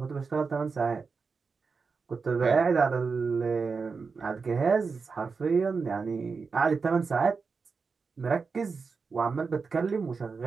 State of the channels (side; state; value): left; quieter; 4.9 dB